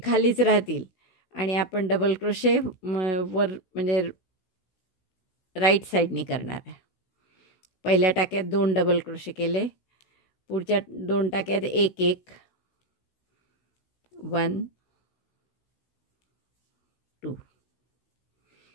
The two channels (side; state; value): right; late; 16 ms